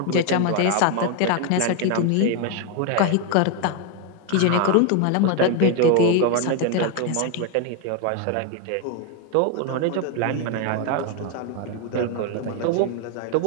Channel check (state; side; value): different; both; correlation 0.01